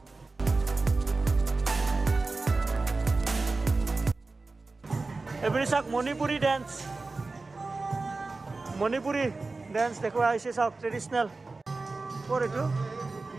এইপিনে চাওক, মণিপুৰী ডেন্স। মণিপুৰী ডেন্স দেখুওৱা হৈছে। চাওক, ট্ৰেডিশ্যনেল। ক'ৰ এইটো?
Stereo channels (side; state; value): left; quieter; 3.6 dB